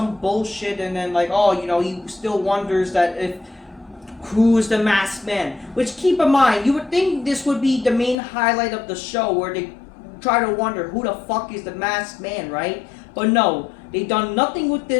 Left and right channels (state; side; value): drops out; right; at 8.2 s